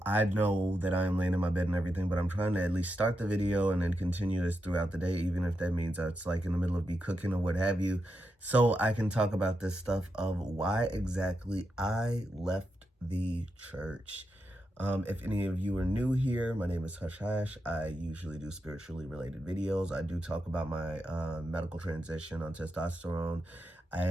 know that I am laying in my bed and everything, but I'm trying to at least start the video and then continue this throughout the day, even if that means it's like in the middle of me cooking or what have you, so I can talk about this stuff of why exactly I left the church. If any of you are new here, my name is Hush Hash. I usually do spiritually related videos. I do talk about my medical transition on testosterone,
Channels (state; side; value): normal; both; correlation 0.86